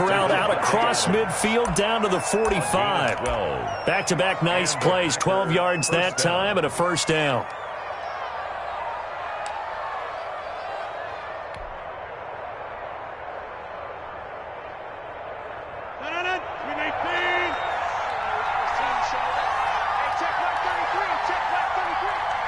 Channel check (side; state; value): both; identical; correlation 1.00